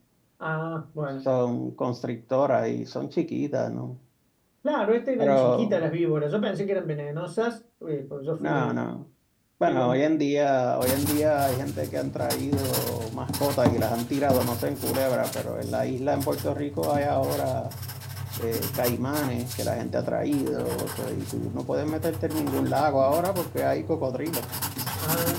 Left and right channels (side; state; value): both; identical; correlation 1.00